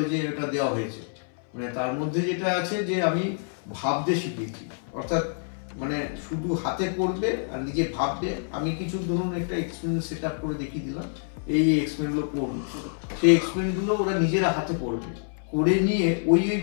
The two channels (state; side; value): silent; right; 60 dB below the other